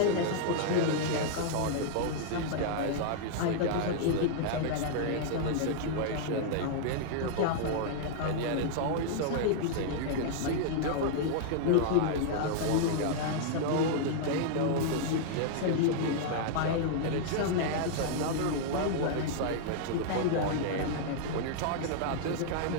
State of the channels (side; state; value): both; different; correlation -0.01